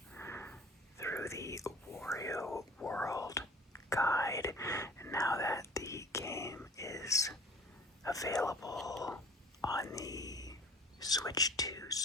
the Wario World guide. And now that the game is available on the Switch 2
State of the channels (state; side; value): normal; both; correlation 0.46